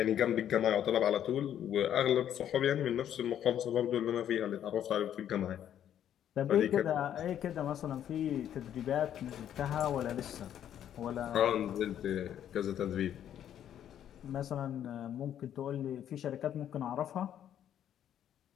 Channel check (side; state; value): right; quieter; 10.3 dB